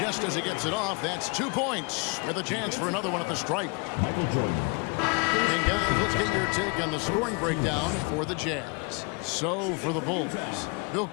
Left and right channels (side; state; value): right; quieter; 32.1 dB